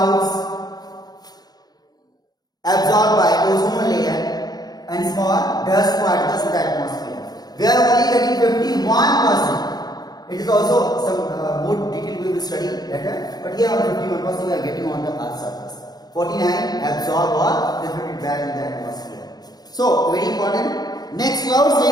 absorbed by ozone layer and small dust particles in the atmosphere. We are only getting 51%. It is also some more detail we will study later, but here only 51% we are getting on the Earth's surface. 49 absorb or reflected back in the atmosphere. So very important. Next, clouds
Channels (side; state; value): right; late; 0.19 ms